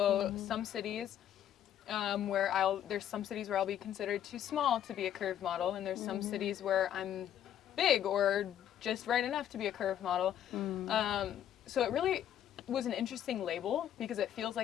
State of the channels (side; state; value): right; quieter; 10.5 dB